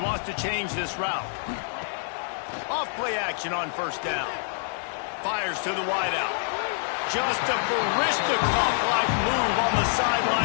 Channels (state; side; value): silent; right; digital silence